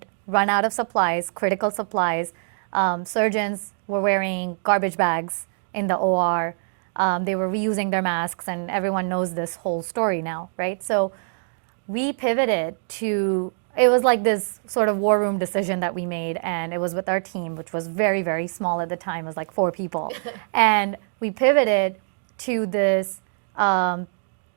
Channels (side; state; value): left; silent; digital silence